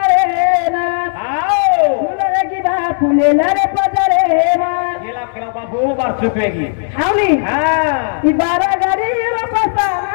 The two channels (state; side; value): silent; right; digital silence